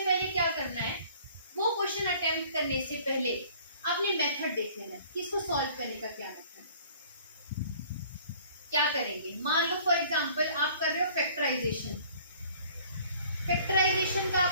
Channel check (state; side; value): inverted; both; correlation -0.53